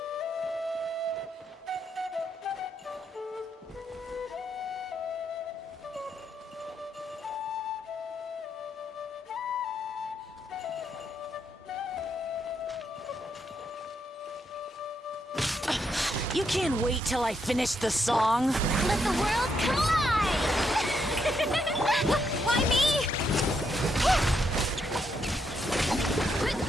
You can't wait till I finish the song? Let the world collide! Why me?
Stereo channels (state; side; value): normal; both; correlation 0.78